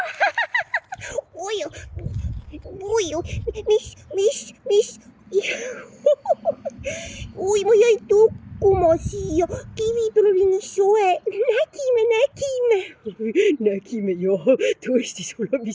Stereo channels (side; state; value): both; identical; correlation 1.00